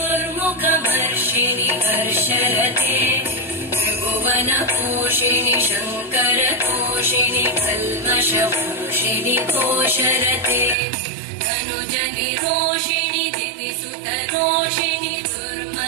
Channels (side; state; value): left; drops out; at 10.8 s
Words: हर्षरते त्रिभुवनपोषिणि शङ्करतोषिणि कल्मषपोषिणि घोषरते तनुजनिरोषिणि दिविसुतरोषिणि